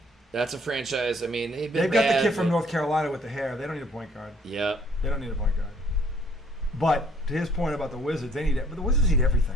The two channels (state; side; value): normal; both; correlation 0.61